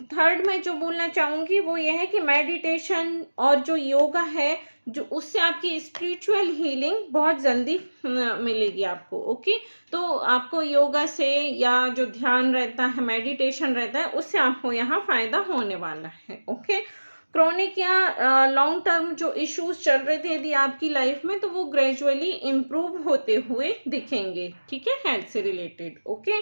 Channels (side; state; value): both; inverted; correlation -1.00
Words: मैं जो बोलना चाहूँगी वो ये है कि मेडिटेशन और जो योगा है जो उससे आपकी स्पिरिचुअल हीलिंग बहुत जल्दी मिलेगी आपको। ओके, तो आपको योगा से या जो ध्यान रहता है, मेडिटेशन रहता है, उससे आपको यहाँ फायदा होने वाला है। ओके, क्रोनिक या लॉन्ग टर्म जो इश्यूज चल रहे थे यदि आपकी लाइफ में, तो वो ग्रेजुअली इम्प्रूव होते हुए दिखेंगे। ठीक है, हेल्थ से रिलेटेड। ओके,